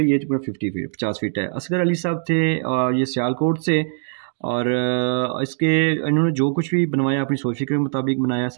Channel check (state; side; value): silent; left; digital silence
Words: ये तकरीबन 50 फीट है। असगर अली साहब थे ये सियालकोट से और इसके इन्होंने जो कुछ भी बनवाया अपनी सोच फिक्र के मुताबिक बनाया।